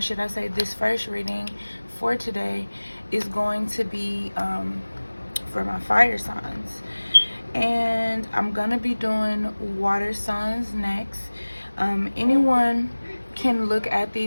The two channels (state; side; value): inverted; both; correlation -1.00